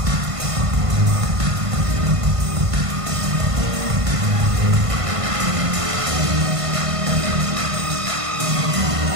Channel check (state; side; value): late; left; 1.5 ms